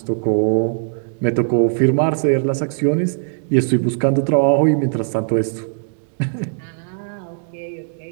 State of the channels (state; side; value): silent; left; 66 dB below the other